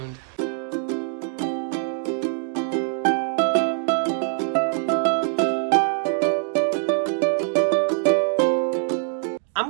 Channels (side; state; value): left; silent; 63 dB below the other